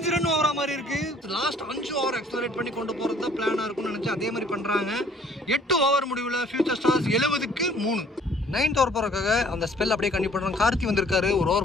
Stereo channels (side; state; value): both; normal; correlation 0.57